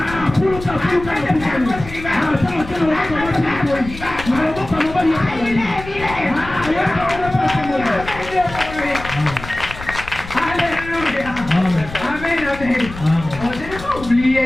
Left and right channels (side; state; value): left; noise; rumble, 13 dB below the sound